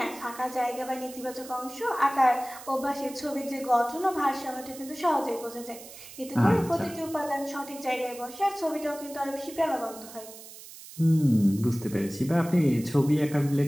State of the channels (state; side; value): noise; right; hiss, 16 dB below the sound